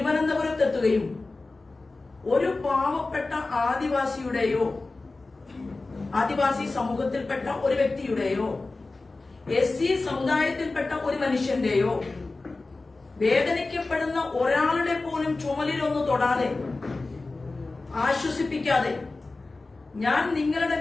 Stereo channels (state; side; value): quieter; right; 3.4 dB